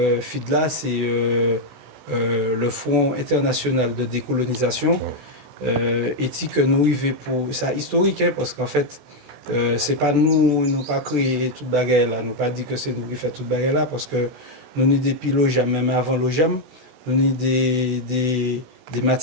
FIDLA, c'est le Front international de décolonisation. Et que nous arrivons pour ça historique, hein, parce qu'en fait, c'est pas nous pas créé toute bagarre là, nous pas dit que c'est nous qui fait toute bagarre là, parce que nous ni depuis l'OJAM, même avant l'OJAM, nous ni des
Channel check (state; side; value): late; left; 16 ms